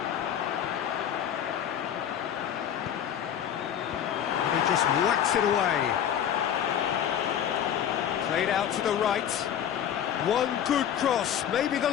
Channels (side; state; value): right; quieter; 9.6 dB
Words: And he just whacks it away. Played out to the right. One good cross, maybe the